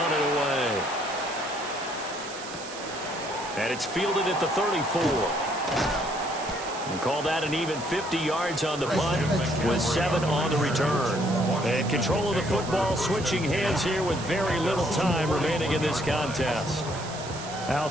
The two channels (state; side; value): noise; right; hiss, 13 dB below the sound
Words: it away. And it's fielded at the 34. And call that an even 50 yards on the punt with 7 on the return. And control of the football switching hands here with very little time remaining in this contest.